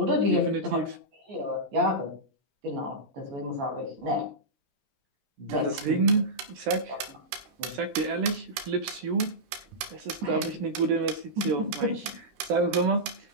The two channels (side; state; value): left; late; 15 ms